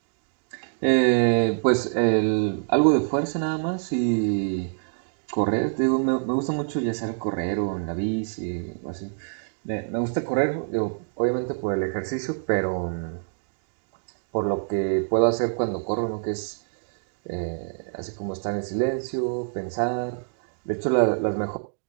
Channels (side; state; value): left; silent; digital silence